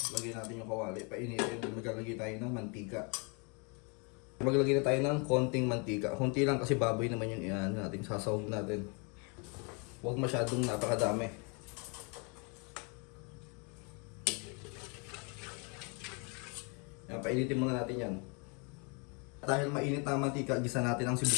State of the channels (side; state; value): right; quieter; 34.0 dB